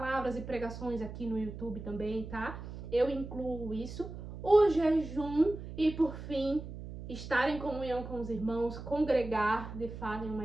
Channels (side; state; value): right; noise; hum, 10 dB below the sound